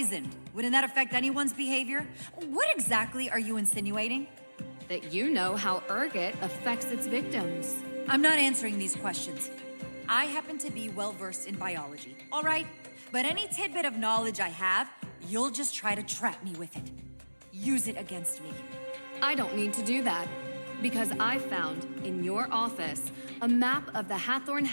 Wouldn't that affect anyone's behavior? What exactly are you insinuating? That you know how ergot affects its victims. I'm not answering these questions. I happen to be well-versed in biology, all right? But any tidbit of knowledge I have, you'll just try to trap me with it. Use it against me. I don't need to do that, because I found, in your office, a map of the Hathorne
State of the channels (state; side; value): inverted; both; correlation -1.00